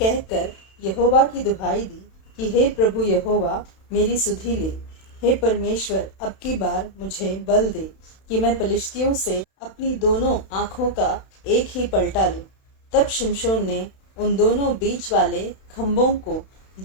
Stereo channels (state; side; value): late; right; 31 ms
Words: यहोवा की दुहाई दी कि हे प्रभु यहोवा, मेरी सुधि ले। हे परमेश्वर, अब की बार मुझे बल दे कि मैं पलिश्तियों से अपनी दोनों आंखों का एक ही पलटा लूं। तब शिमशोन ने उन दोनों बीच वाले खंभों को